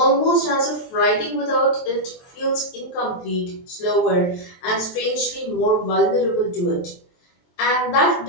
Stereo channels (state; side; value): late; right; 23 ms